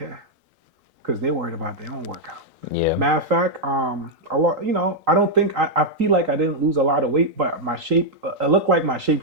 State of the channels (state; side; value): late; left; 3.8 ms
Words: because they're worried about their own workout. Yeah. Matter of fact, a lot, I don't think, I feel like I didn't lose a lot of weight, but my shape, it looked like my shape